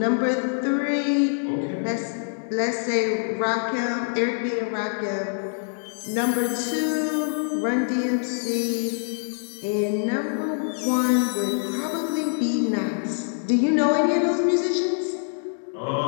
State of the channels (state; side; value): silent; right; digital silence